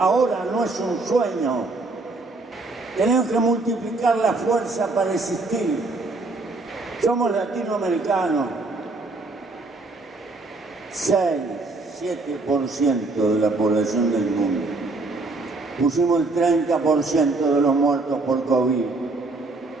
no es un sueño. Tenemos que multiplicar la fuerza para existir. Somos latinoamericanos. 6-7% de la población del mundo. Pusimos el 30% de los muertos por COVID.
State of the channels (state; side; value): quieter; left; 3.3 dB